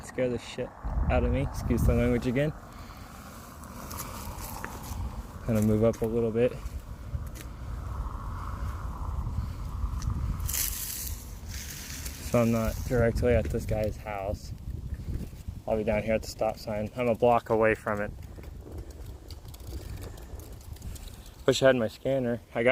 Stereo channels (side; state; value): both; identical; correlation 1.00